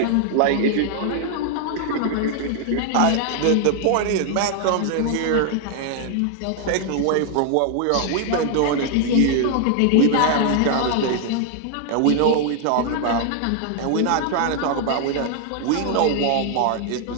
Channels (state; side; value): different; both; correlation 0.00